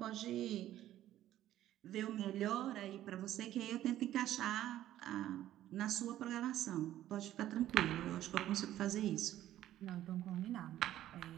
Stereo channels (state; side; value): quieter; left; 13.0 dB